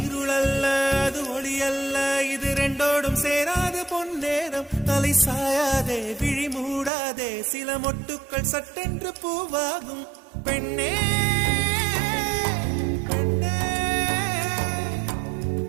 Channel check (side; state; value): left; drops out; at 6.9 s